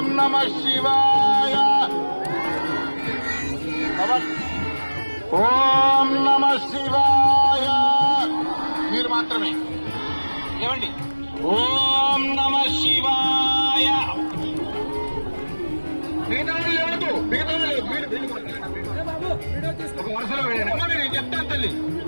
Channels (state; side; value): inverted; both; correlation -1.00